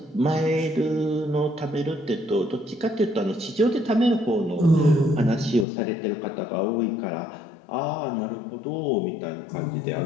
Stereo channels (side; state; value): right; drops out; at 5.7 s